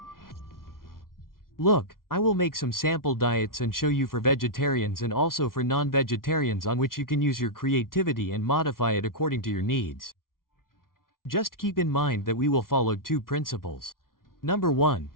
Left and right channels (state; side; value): late; right; 0.92 ms